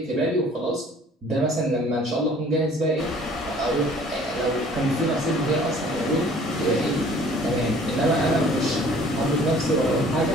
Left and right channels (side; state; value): both; normal; correlation 0.53